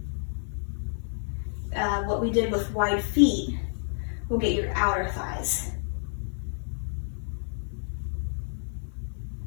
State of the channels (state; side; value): silent; right; 55 dB below the other